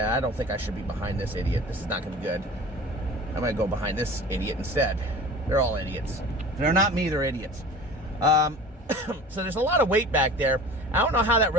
I don't think I should be behind this idiot. This is not going to be good. I'm going to go behind this idiot instead. They're all idiots. If they're not me, they're idiots. So there's a lot of weight back there. I don't know how that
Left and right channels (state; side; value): normal; both; correlation 0.40